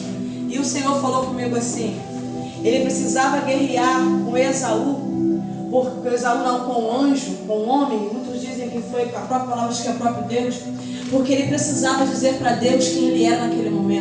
E o Senhor falou comigo assim, ele precisava guerrear com Esaú, porque Esaú não com o anjo, com o homem. Muitos dizem que foi a própria palavra, acho que é o próprio Deus, porque ele precisava dizer para Deus quem ele era naquele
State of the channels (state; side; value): identical; both; correlation 1.00